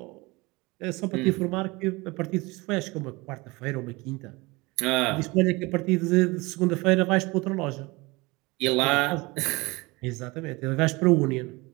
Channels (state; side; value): quieter; left; 23.9 dB